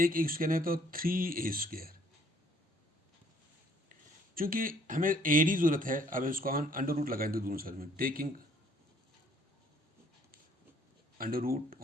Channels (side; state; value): both; normal; correlation 0.61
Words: स्क्वायर है तो 3A स्क्वायर। चूंकि हमें AD जरूरत है, अब इसको हम अंडर रूट लगाएंगे दोनों साइड में, taking under root